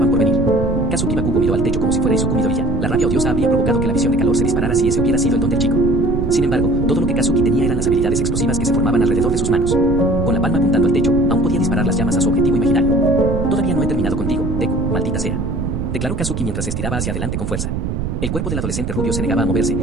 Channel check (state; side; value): noise; right; rumble, 3 dB below the sound